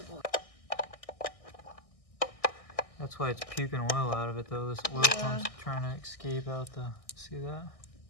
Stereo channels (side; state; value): right; late; 1.6 ms